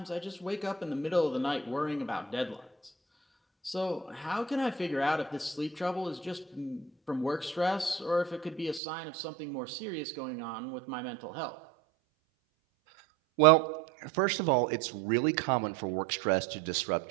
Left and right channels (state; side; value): drops out; left; at 8.8 s